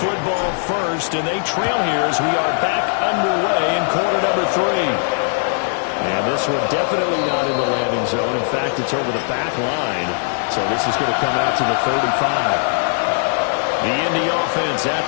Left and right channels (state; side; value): silent; right; digital silence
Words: football first, and they trail here as we are back underway in quarter number 3. And this one definitely not in the landing zone. In fact, it's over the back line. So this is going to come out to the 35. The Indy offense at